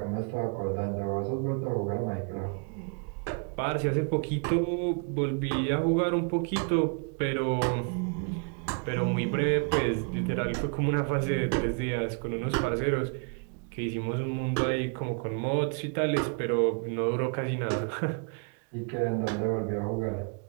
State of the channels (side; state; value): left; quieter; 39.3 dB